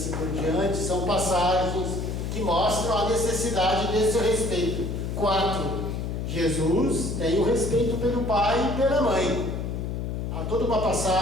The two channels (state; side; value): noise; left; hum, 3 dB below the sound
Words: por diante. São passagens que mostram a necessidade desse respeito. 4. Jesus tem o respeito pelo pai e pela mãe. Há toda uma